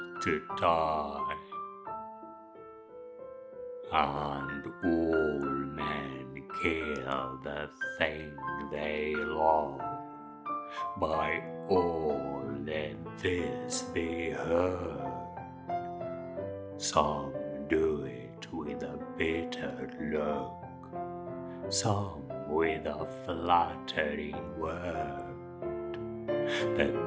to die. And all men kill the thing they love. By all let this be heard. Some do it with a bitter look, some with a flattering word.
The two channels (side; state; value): both; identical; correlation 1.00